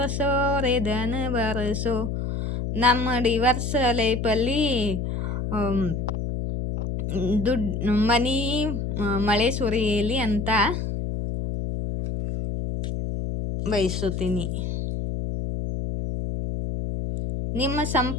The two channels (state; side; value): noise; left; hum, 2 dB below the sound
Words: ರೇ ಧನ ಬರಸೋ. ನಮ್ಮ ಡಿವರ್ಸ್ ಲೈಫಲ್ಲಿ ಮನಿ ಮಳೆ ಸುರಿಯಲಿ ಅಂತ ಬಯಸುತ್ತೀನಿ. ನಿಮ್ಮ